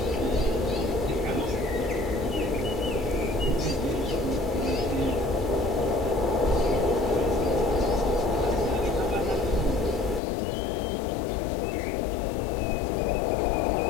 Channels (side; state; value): right; drops out; at 10.2 s